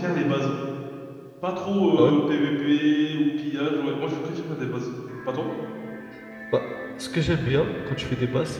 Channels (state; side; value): identical; both; correlation 1.00